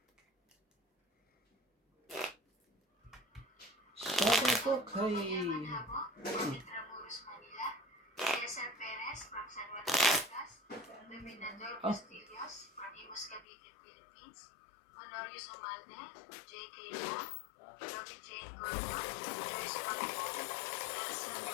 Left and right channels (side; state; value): right; drops out; at 13.5 s